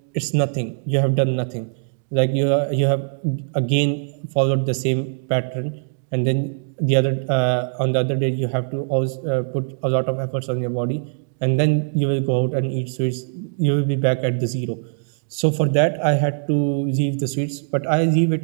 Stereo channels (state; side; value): silent; left; digital silence